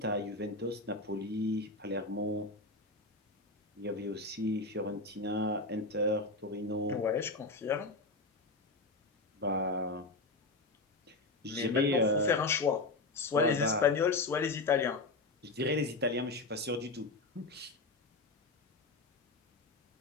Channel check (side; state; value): right; quieter; 3.2 dB